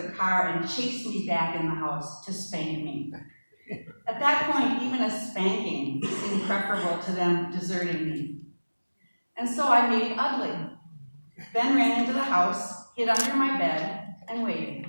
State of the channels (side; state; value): both; inverted; correlation -1.00